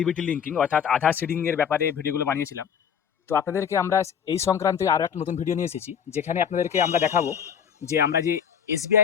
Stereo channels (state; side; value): quieter; right; 7.9 dB